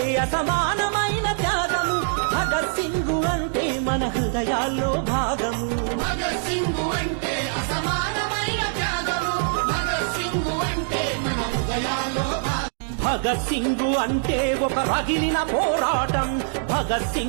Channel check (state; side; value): silent; left; digital silence